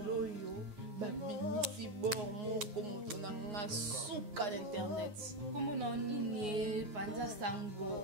yo babimisi bor moko moto na nga suka d'internet. Comment on nini panja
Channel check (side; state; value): left; late; 9.5 ms